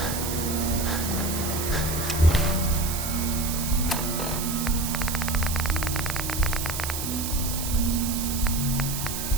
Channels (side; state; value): right; noise; hiss, 4 dB below the sound